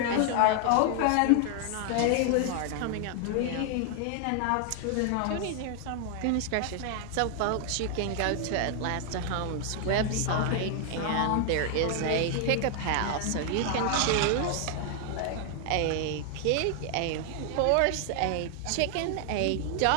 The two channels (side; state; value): both; different; correlation 0.00